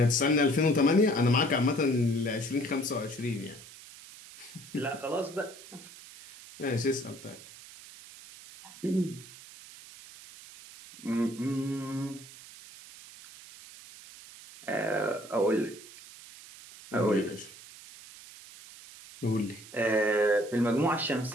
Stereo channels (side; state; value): right; noise; hiss, 18 dB below the sound